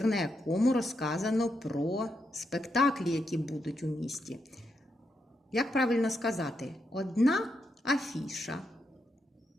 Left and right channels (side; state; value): both; normal; correlation 0.82